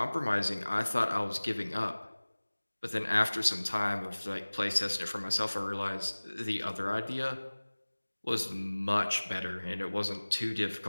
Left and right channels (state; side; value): inverted; both; correlation -1.00